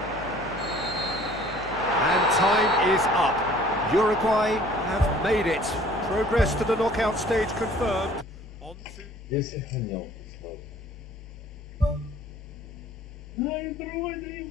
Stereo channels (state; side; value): normal; both; correlation 0.53